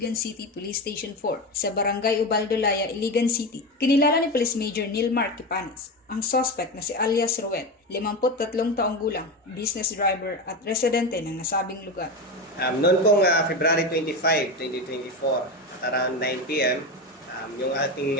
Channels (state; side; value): normal; both; correlation 0.19